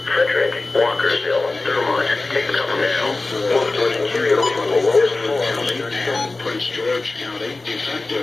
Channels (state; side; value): quieter; right; 3.3 dB